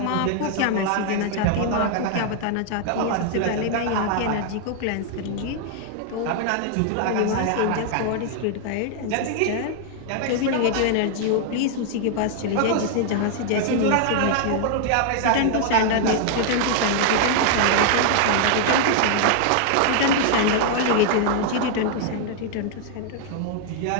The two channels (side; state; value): both; different; correlation 0.00